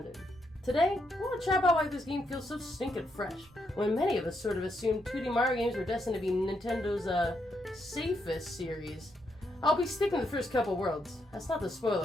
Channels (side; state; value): both; normal; correlation 0.79